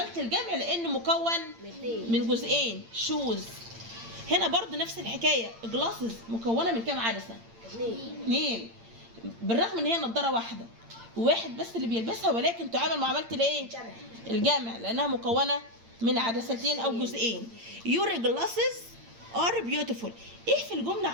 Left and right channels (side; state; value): left; late; 8.8 ms